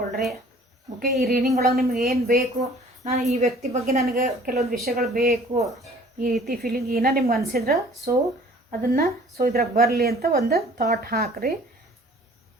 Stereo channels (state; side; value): normal; both; correlation 0.52